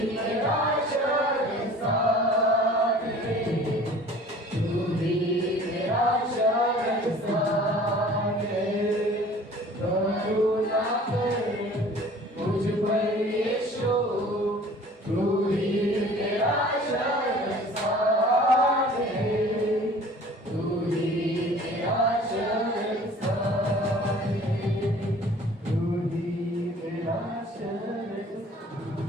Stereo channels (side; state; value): both; normal; correlation 0.48